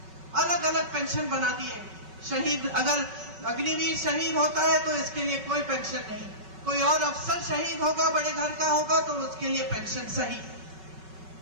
अलग अलग पेंशन बना दिए। शहीद, अगर अग्निवीर शहीद होता है तो इसके लिए कोई पेंशन नहीं। कोई और अफसर शहीद होगा, बड़े घर का होगा, तो उसके लिए पेंशन सही।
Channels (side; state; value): left; late; 5.3 ms